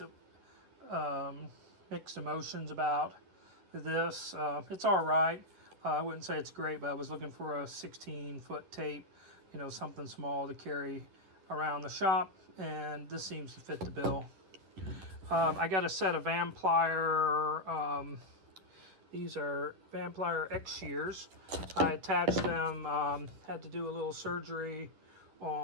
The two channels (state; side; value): late; left; 10 ms